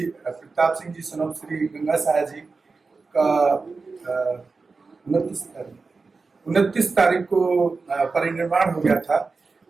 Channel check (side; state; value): left; quieter; 4.2 dB